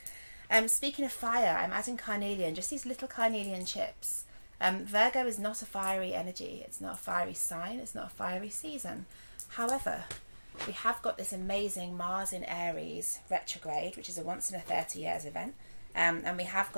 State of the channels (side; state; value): both; inverted; correlation -1.00